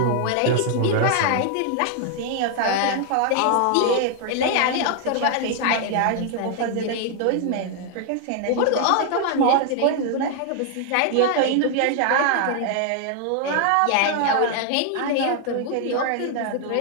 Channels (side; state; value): both; different; correlation 0.00